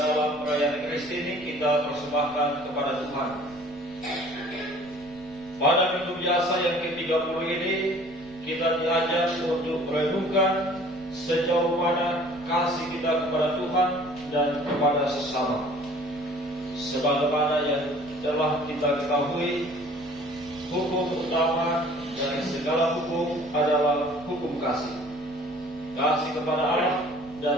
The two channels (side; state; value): right; noise; rumble, 25 dB below the sound